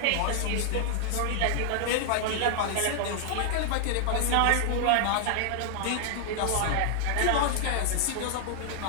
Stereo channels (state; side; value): different; both; correlation 0.00